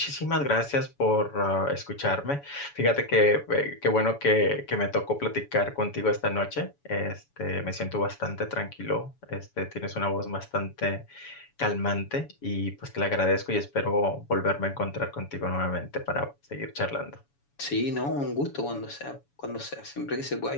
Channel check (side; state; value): right; late; 7.1 ms